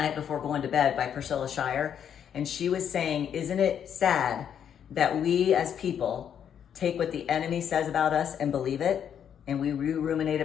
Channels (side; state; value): right; quieter; 8.7 dB